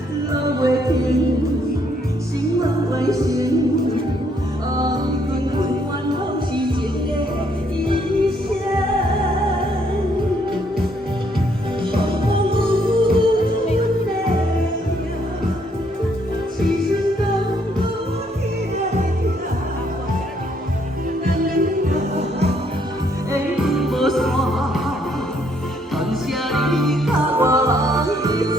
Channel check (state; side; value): normal; both; correlation 0.69